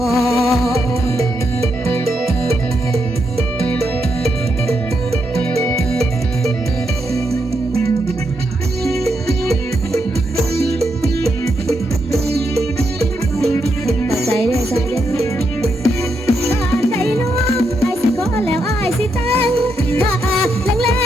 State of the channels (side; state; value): both; normal; correlation 0.81